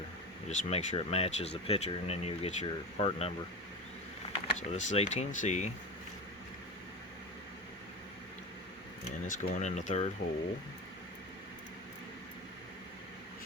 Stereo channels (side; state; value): both; normal; correlation 0.25